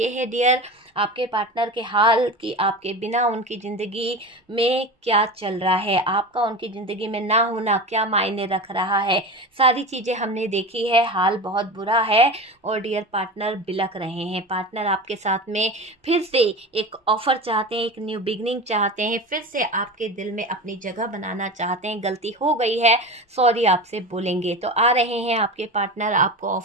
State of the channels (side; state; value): both; normal; correlation 0.28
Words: है डियर आपके पार्टनर के हाल कि आपके बिना उनकी ज़िंदगी में क्या चल रहा है, आपका उनकी ज़िंदगी में ना होना क्या मायने रख रहा है। सारी चीज़ें हमने देखी है, हाल बहुत बुरा है और डियर पार्टनर बिलख रहे हैं। पार्टनर आपके साथ में फिर से एक ऑफर चाहते हैं, एक न्यू बिगनिंग चाहते हैं, फिर से आपके दिल में अपनी जगह बनाना चाहते हैं। गलती हो गई है, सॉरी आपसे बोलेंगे। तो आ रहे हैं आपके पार्टनर आपको